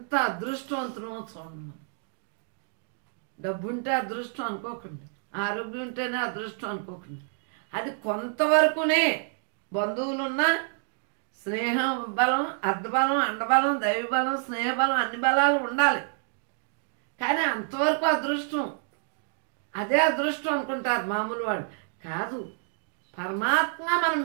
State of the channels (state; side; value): silent; left; 57 dB below the other